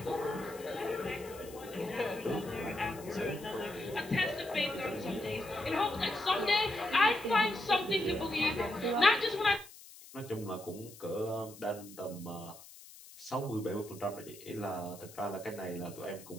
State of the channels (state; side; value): noise; left; hiss, 18 dB below the sound